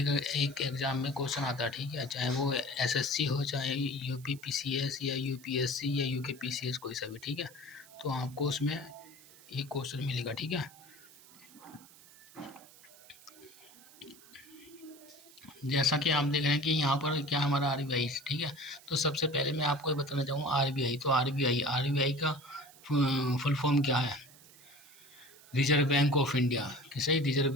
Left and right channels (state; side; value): noise; right; hiss, 23 dB below the sound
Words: एग्ज़ाम में क्वेश्चन आता है। ठीक है, चाहे वो एसएससी हो, चाहे यूपी पीसीएस या यूपीएससी या यूके पीसीएस, कोई सा भी। ठीक है, तो आपको उसमें एक क्वेश्चन मिलेगा। ठीक है, जैसा कि आप देख रहे हैं कि यहाँ पर क्या हमारा आरबीआई। ठीक है, तो सबसे पहले मैं आपको ये बताना चाहूँगा आरबीआई। तो आरबीआई का फुल फॉर्म क्या है। रिजर्व बैंक ऑफ इंडिया, किसे रिजर्व